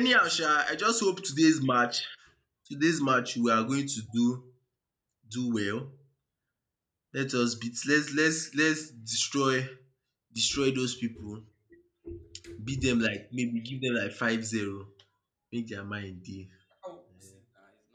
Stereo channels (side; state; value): both; identical; correlation 1.00